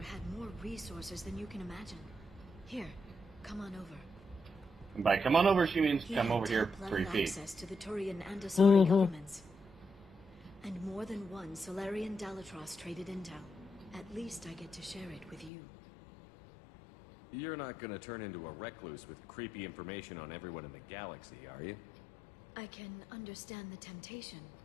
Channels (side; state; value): right; drops out; at 15.5 s